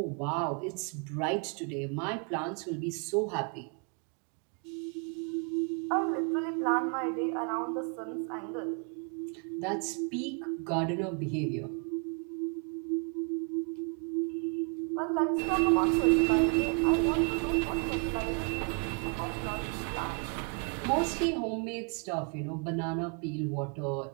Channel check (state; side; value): quieter; left; 39.4 dB